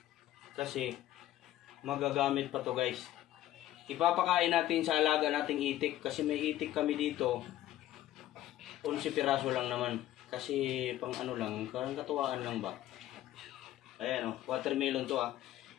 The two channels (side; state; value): right; quieter; 13.7 dB